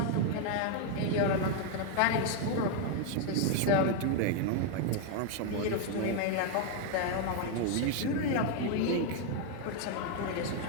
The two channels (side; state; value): both; different; correlation 0.01